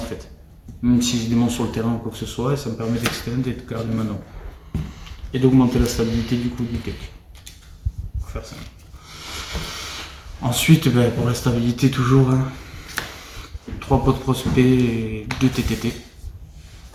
fait. Même si j'ai des monstres sur le terrain ou quoi que ce soit, et ça me permet d'extend et de garder ma norme. Et d'augmenter la stabilité du coup du deck. Pour faire ça. Ensuite, pour la stabilité toujours, 3 pots de prospect et 2 TTT.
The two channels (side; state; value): both; identical; correlation 1.00